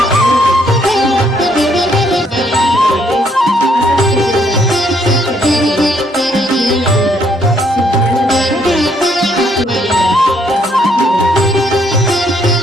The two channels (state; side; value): normal; both; correlation 0.69